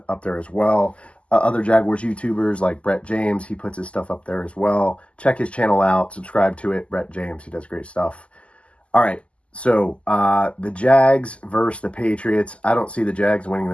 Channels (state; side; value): late; right; 0.057 ms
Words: up there as well. Other Jaguars YouTubers like Brett James, he puts his stuff up there as well. Check his channel out, subscribe to it. Brett James, he does great stuff. All right, so the Jags versus the Patriots. I don't see the Jags winning